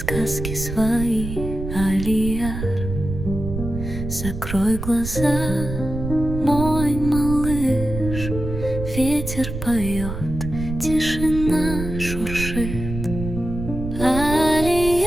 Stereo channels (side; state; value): right; noise; rumble, 6 dB below the sound